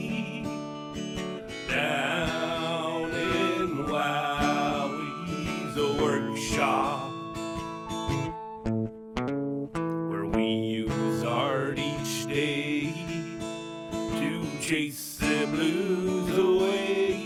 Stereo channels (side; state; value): both; identical; correlation 1.00